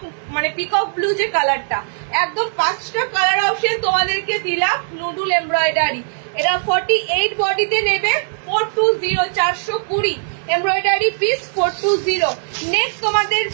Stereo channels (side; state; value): left; silent; digital silence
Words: মানে পিকক ব্লু যে কালারটা, একদম 5টা কালার অপশন তোমাদেরকে দিলাম নুডুল এমব্রয়ডারি। এটা 48 বডিতে নেবে 420, 420 এমব্রয়ডারি পিস 420। নেক্সট তোমাদের